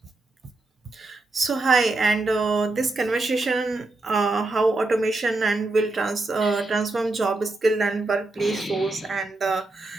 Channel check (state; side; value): quieter; left; 3.1 dB